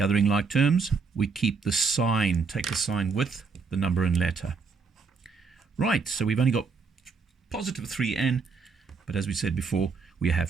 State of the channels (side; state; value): left; quieter; 4.9 dB